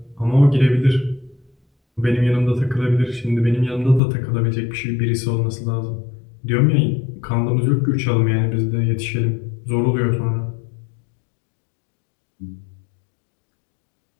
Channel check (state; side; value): drops out; right; at 4.0 s